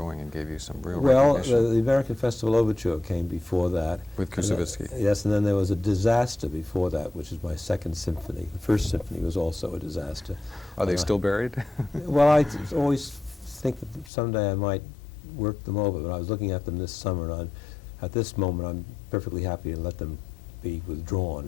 and gave you some real recognition. The American Festival Overture came before that. With Kusevitsky. Yes, and then there was a disaster before that, which is my second symphony. The first symphony was also a disaster. Are they still buried? Well, I always think that someday I might work them over, but I was looking at them this summer, and at this moment I'm perfectly happy to let them be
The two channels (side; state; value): right; drops out; at 14.1 s